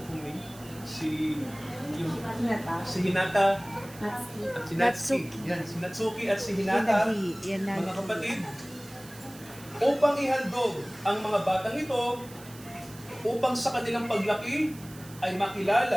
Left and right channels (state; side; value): noise; right; hiss, 19 dB below the sound